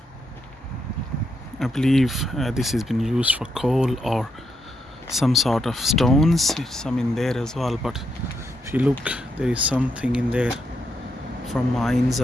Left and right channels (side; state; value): both; normal; correlation 0.80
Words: I believe this has been used for coal or some sort of stones. It's some in there as well, but if you look, there is something in there from mines,